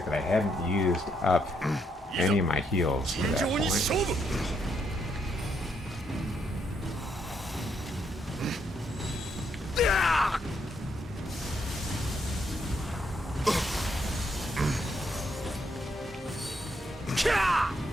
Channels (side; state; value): both; normal; correlation 0.76